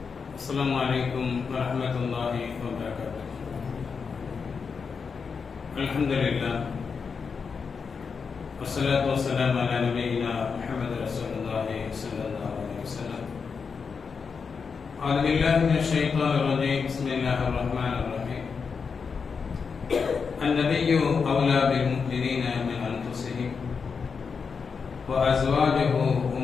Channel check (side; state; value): right; quieter; 5.6 dB